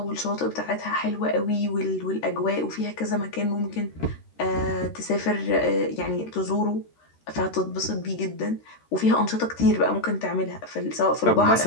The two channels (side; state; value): right; late; 13 ms